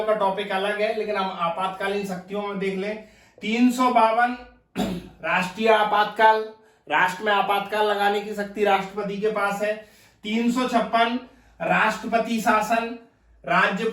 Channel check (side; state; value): both; identical; correlation 1.00